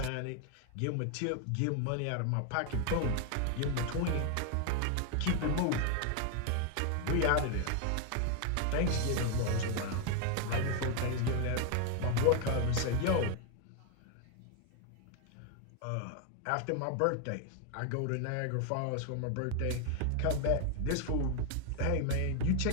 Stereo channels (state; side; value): different; both; correlation 0.01